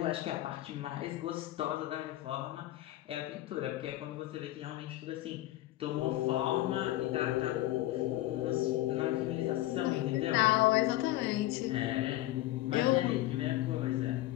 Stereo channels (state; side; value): quieter; right; 16.1 dB